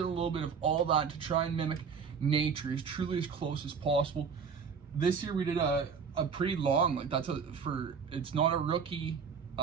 a little bit of all that to try and mimic nature as truly as close as possible. This year we did a pretty long, it's not a rookie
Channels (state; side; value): quieter; left; 6.1 dB